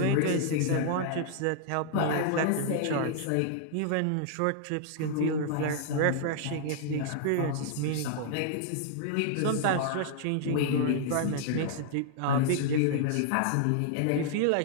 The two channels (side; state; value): both; different; correlation 0.00